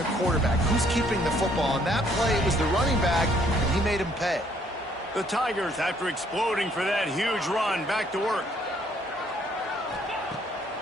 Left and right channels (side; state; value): both; normal; correlation 0.65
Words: quarterback. Who's keeping the football? On that play, it was the running back, and he made him pay. The Tigers, after exploding for that huge run, back to work.